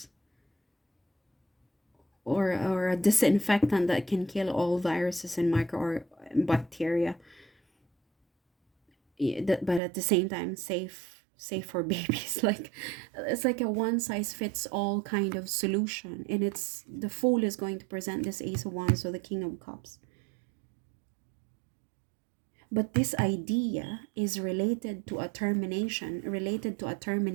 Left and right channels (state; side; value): drops out; left; at 9.8 s